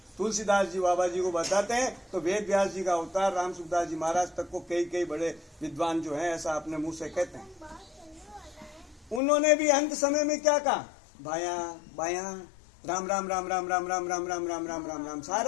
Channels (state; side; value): drops out; right; at 9.2 s